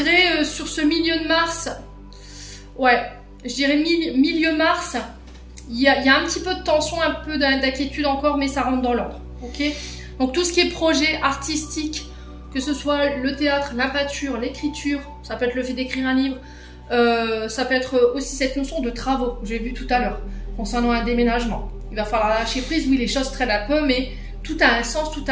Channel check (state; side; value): identical; both; correlation 1.00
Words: sur ce milieu de mars, ouais, je dirais milieu mars, il y a un petit peu de tension, un peu d'inquiétude encore, mais ça rentre dans l'ordre. Ok? Donc tout ce qui est projet artistique, que ce soit le théâtre, la peinture, l'écriture, ça peut être le fait d'écrire un livre, ça peut être aussi cette notion de travaux, j'ai vu tout à l'heure, concernant un déménagement. Il va falloir lâcher prise, oui, les choses traînent un peu, mais tout a un sens, tout